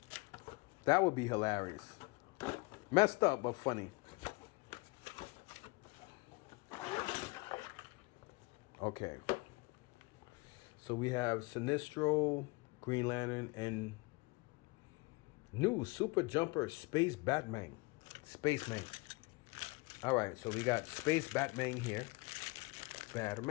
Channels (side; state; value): right; quieter; 25.8 dB